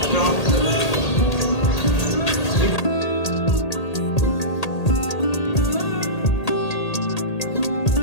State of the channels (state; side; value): late; right; 1.8 ms